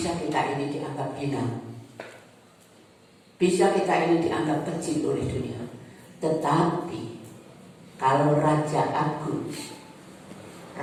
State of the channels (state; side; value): identical; both; correlation 1.00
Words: kita ini dianggap hina, bisa kita ini dianggap kecil oleh dunia. Tetapi kalau Raja Agung,